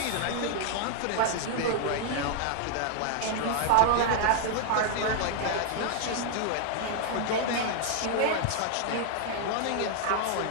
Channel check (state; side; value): different; both; correlation 0.00